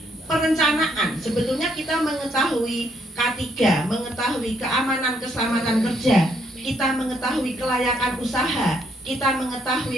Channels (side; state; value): both; normal; correlation 0.71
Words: perencanaan. Sebetulnya kita mengetahui K3, mengetahui keamanan keselamatan kerja, kita mengetahui kelayakan usaha, kita